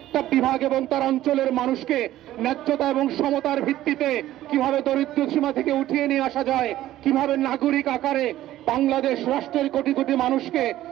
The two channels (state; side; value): quieter; left; 14.1 dB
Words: বিভাগ এবং তার অঞ্চলের মানুষকে ন্যায্যতা এবং সমতার ভিত্তিতে কিভাবে দরিদ্র সীমা থেকে উঠিয়ে নিয়ে আসা যায়, কিভাবে নাগরিক আকারে বাংলাদেশ রাষ্ট্রের কোটি কোটি মানুষকে